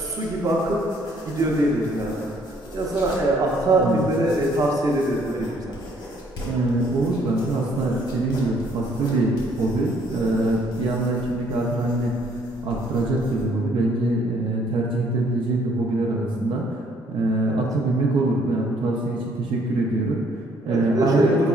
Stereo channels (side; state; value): both; normal; correlation 0.64